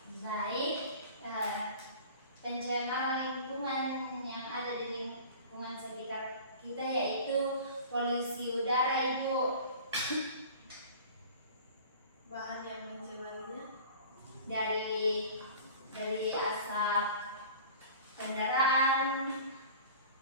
Baik. Pencemaran lingkungan yang ada di lingkungan sekitar kita kita yaitu polusi udara, Ibu. Bahan yang mencemarinya Dari asap kendaraan,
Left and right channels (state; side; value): inverted; both; correlation -0.42